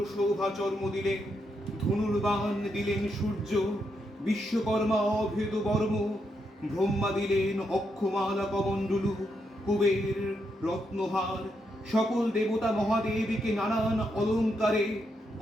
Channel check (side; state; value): both; normal; correlation 0.81